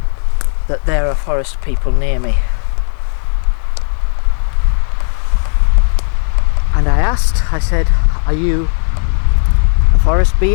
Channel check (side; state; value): right; silent; 71 dB below the other